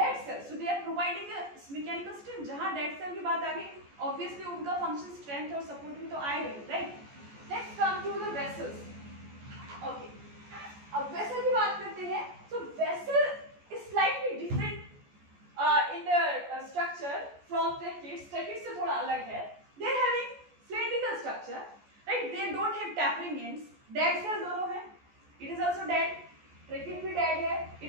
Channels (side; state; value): left; late; 14 ms